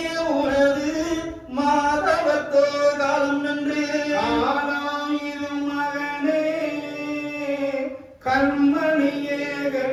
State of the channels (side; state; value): both; identical; correlation 1.00